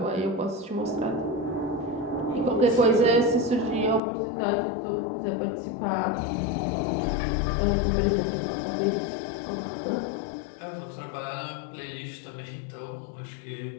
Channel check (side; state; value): right; drops out; at 4.0 s